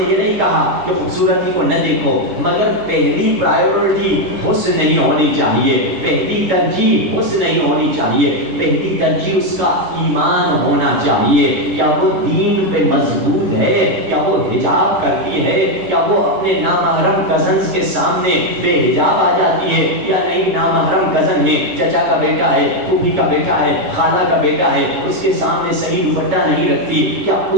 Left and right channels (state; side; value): late; left; 9.8 ms